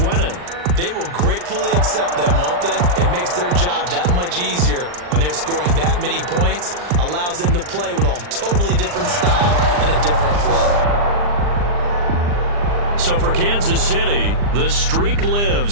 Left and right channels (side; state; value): left; late; 40 ms